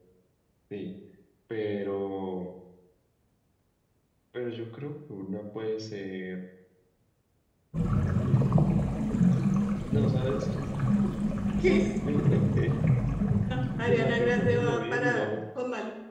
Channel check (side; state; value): both; identical; correlation 1.00